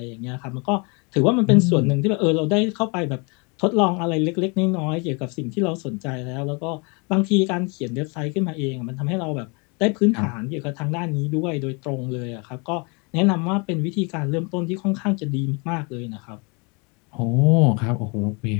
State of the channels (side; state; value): right; quieter; 32.0 dB